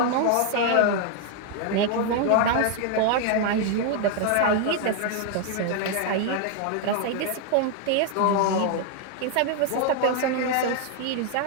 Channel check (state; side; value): different; both; correlation 0.00